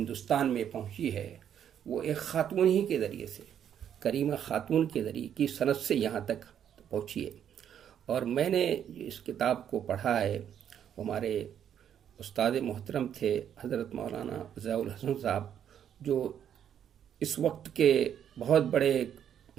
میں پہنچی ہے، وہ ایک خاتون ہی کے ذریعے سے، کریمہ خاتون کے ذریعے کی سند سے یہاں تک پہنچی ہے۔ اور میں نے اس کتاب کو پڑھا ہے، ہمارے استاد محترم تھے حضرت مولانا ضیاء الحسن صاحب، جو اس وقت کے بہت بڑے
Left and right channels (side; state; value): left; quieter; 9.3 dB